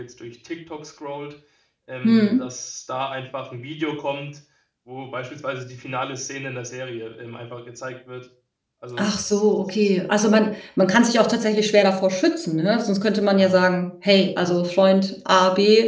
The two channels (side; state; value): both; identical; correlation 1.00